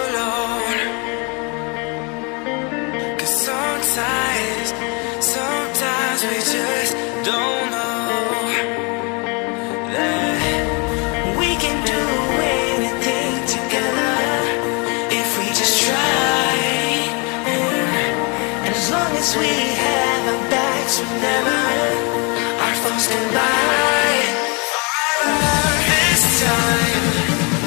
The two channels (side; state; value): right; quieter; 31.8 dB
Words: 'Cause sometimes we just don't know that we can do anything together if we just try. And as long as we have our backs, whenever our foes can buy. This time